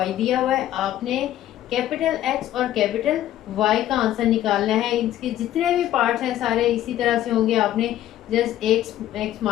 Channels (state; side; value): quieter; right; 12.8 dB